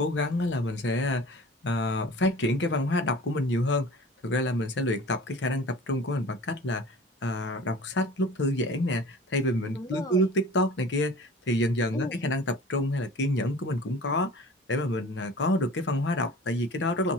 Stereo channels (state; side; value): normal; both; correlation 0.42